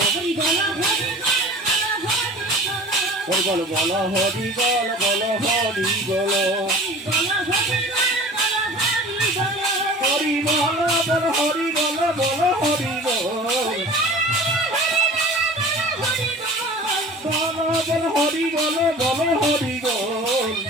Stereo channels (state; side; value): normal; both; correlation 0.41